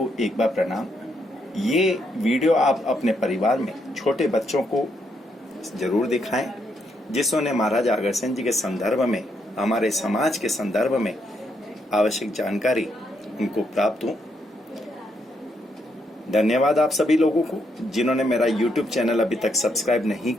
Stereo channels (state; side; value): normal; both; correlation 0.77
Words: एक बार प्रणाम। ये वीडियो आप अपने परिवार में छोटे बच्चों को जरूर दिखाएं, जिसने महाराज अग्रसेन जी के संदर्भ में, हमारे समाज के संदर्भ में आवश्यक जानकारी उनको प्राप्त हो। धन्यवाद आप सभी लोगों को जिन्होंने मेरा YouTube चैनल अभी तक सब्सक्राइब नहीं